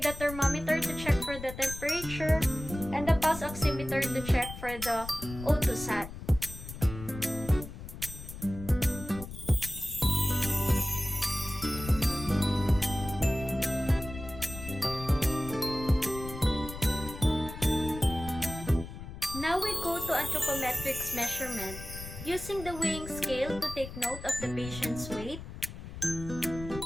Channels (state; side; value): noise; left; rumble, 11 dB below the sound